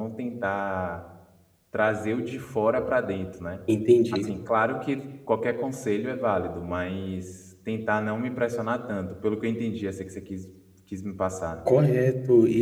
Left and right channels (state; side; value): identical; both; correlation 1.00